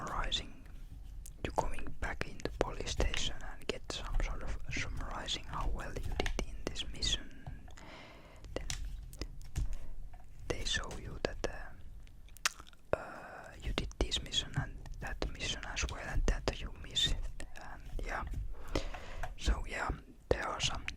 you're going back in the police station and get some sort of summarizing how well you did in this mission. Then they show you that you did this mission and that mission as well, and that you missed it. And yeah, so yeah, there are some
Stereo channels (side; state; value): both; identical; correlation 1.00